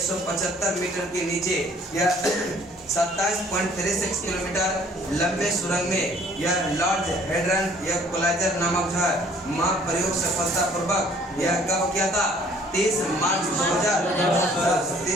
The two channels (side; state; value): both; normal; correlation 0.57